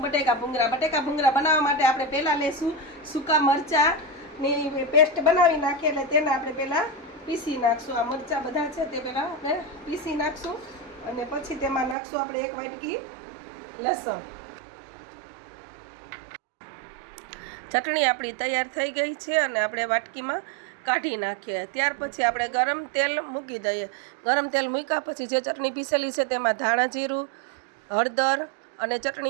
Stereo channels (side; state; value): left; drops out; at 12.0 s